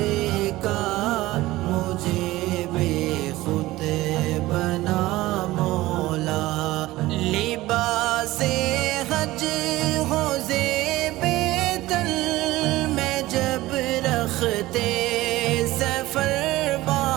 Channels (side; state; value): left; quieter; 17.8 dB